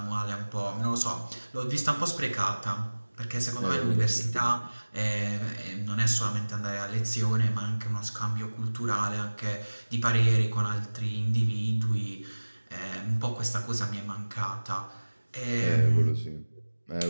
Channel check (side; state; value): both; inverted; correlation -1.00